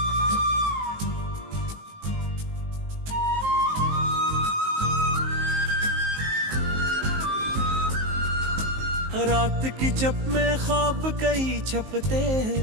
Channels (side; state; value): left; late; 19 ms